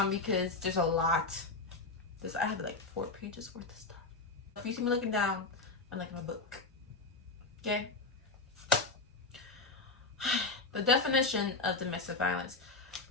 because there's a lot. I have like 4 pages worth of stuff. If you see me looking down, I'm like in a book. Okay. The definition of domestic violence.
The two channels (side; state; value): right; quieter; 3.6 dB